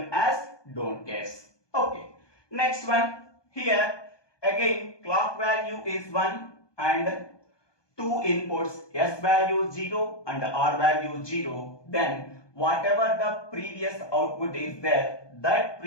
as don't guess. Okay. Next one. Here again clock value is 1 and two inputs S value 0 and R value 0. Then whatever the previous output is there, that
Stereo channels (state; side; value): late; right; 1.2 ms